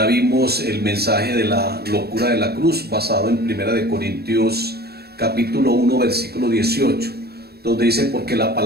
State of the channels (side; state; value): left; late; 0.46 ms